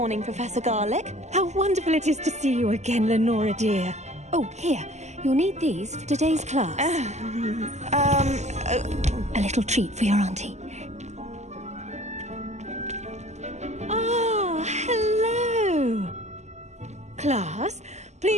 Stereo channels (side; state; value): left; late; 0.33 ms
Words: Professor Garlick. How wonderful it is to see you again, Lenora dear. Oh, here. You'll need these for today's class. A little treat for your auntie. Ah, hello. Class,